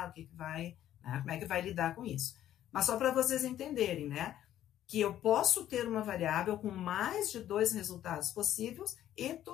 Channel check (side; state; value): right; quieter; 12.0 dB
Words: o que vai, né? Como é que vai lidar com isso. Mas só para vocês entenderem, né? Que eu posso ter uma variável com mais de dois resultados possíveis e